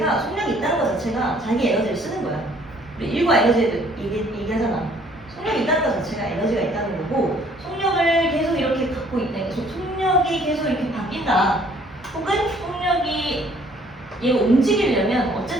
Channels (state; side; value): normal; both; correlation 0.60